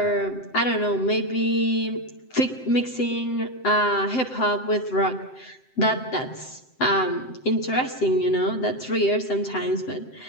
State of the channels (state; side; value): late; right; 7.8 ms